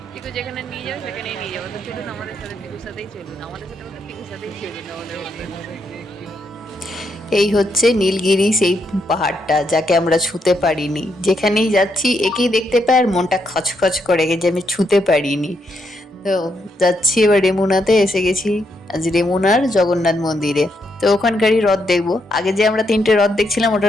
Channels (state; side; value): normal; both; correlation 0.78